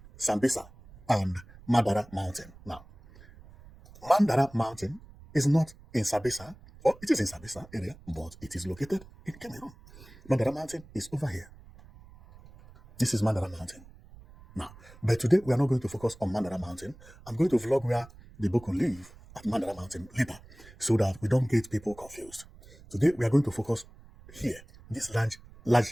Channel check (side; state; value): right; noise; rumble, 21 dB below the sound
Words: Sambisa and Mandara Mountain. Now, Mandara Mountain is not in Sambisa, or it is in Sambisa area, but it is located in Cameroon. Mandara Mountain is over here. This is Mandara Mountain. Now, but today we are not going to focus on Mandara Mountain. I'm going to vlog where the Boko live at Mandara Mountain later, so that we don't get people confused. Today we are going to focus here, this